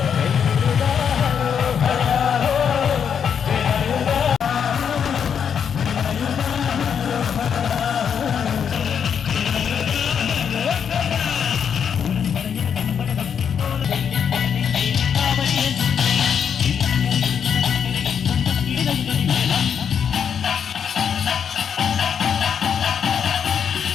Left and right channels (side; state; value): right; quieter; 7.6 dB